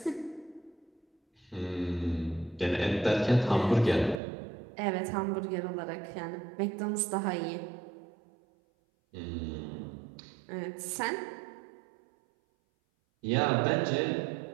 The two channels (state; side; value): drops out; left; at 4.2 s